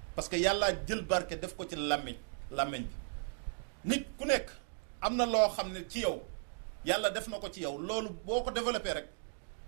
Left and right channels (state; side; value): silent; left; digital silence